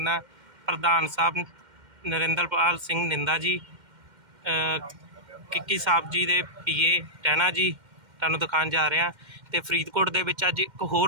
ਪ੍ਰਧਾਨ ਸਾਹਿਬ ਨਰਿੰਦਰਪਾਲ ਸਿੰਘ ਨਿੰਦਾ ਜੀ, ਕਿੱਕੀ ਸਾਹਿਬ ਜੀ ਦੇ ਪੀਏ ਟਹਿਣਾ ਜੀ ਤੁਹਾਨੂੰ ਦਿਖਾਉਣ ਜਾ ਰਹੇ ਹਾਂ। ਤੇ ਫਰੀਦਕੋਟ ਦੇ ਵਿੱਚ ਅੱਜ ਇੱਕ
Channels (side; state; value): left; late; 2.1 ms